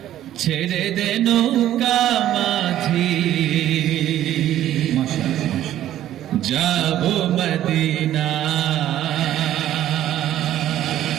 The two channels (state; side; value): quieter; left; 12.4 dB